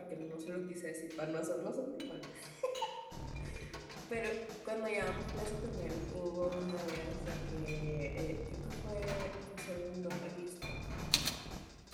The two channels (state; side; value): identical; both; correlation 1.00